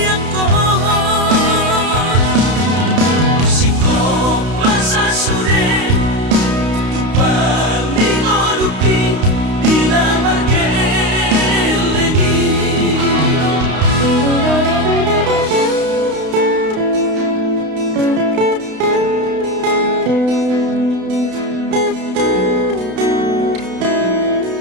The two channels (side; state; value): left; late; 32 ms